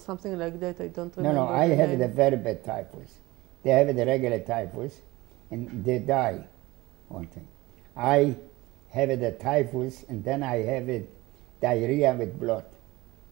like that? I don't remember. No, I have the very bad typhus. They have the regular typhus, and they die. One thing. I have the typhus, and then I have it diarrhea with blood,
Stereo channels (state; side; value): quieter; left; 20.1 dB